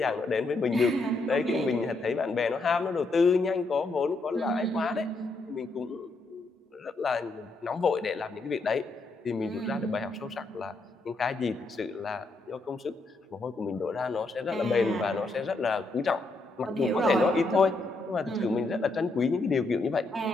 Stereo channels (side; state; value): right; quieter; 3.2 dB